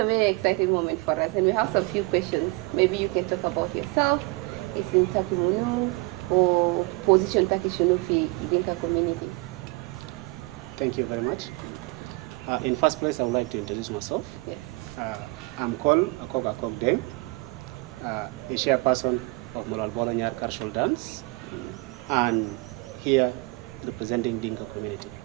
very exciting moment for us, and we have some few questions. Maybe you can talk about yourself, it's in Takimunu, or position Takishunu fi Dinka community. Thank you very much. In first place, I would like to introduce myself. Yes. I'm called Akok Deng, a chairperson of Moral Bologna Cultural Dance, and here representing Dinka community.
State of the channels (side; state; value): left; quieter; 25.6 dB